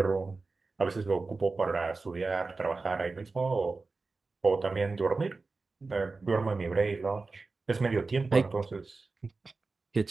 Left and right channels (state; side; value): quieter; left; 3.8 dB